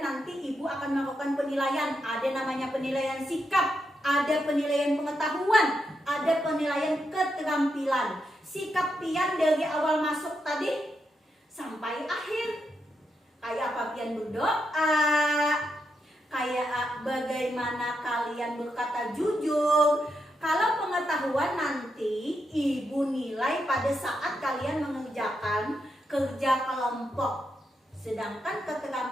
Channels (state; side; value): normal; both; correlation 0.83